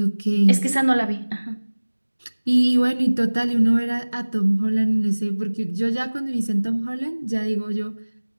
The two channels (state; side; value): inverted; both; correlation -1.00